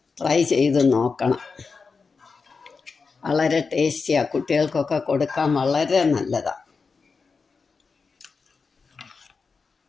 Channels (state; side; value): quieter; right; 4.8 dB